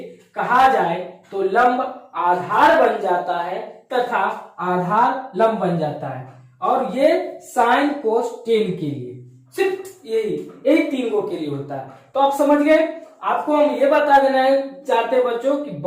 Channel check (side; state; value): both; identical; correlation 1.00